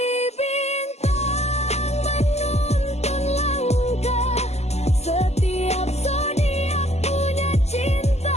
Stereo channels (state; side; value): late; right; 0.31 ms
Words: bintang menuntun langkah, setiap zodiak punya cinta